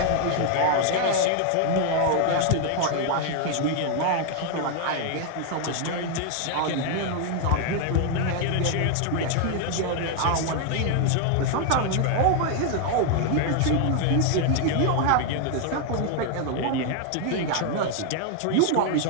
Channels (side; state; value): both; different; correlation 0.00